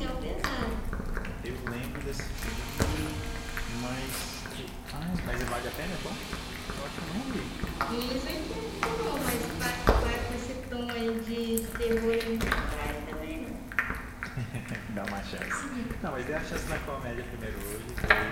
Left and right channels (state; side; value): identical; both; correlation 1.00